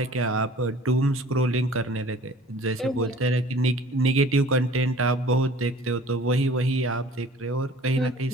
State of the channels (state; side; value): normal; both; correlation 0.49